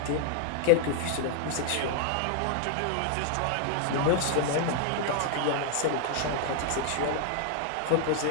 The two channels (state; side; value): different; both; correlation 0.00